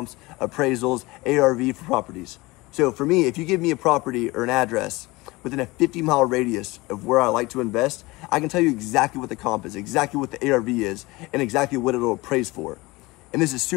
appraisals, ARV for properties. So for me, if you give me a property or an address within a 50-mile radius of where I like to invest, I can tell you exactly what the comp is, exactly what the ARV is, and exactly what it'll appraise for. And this is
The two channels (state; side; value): quieter; right; 22.0 dB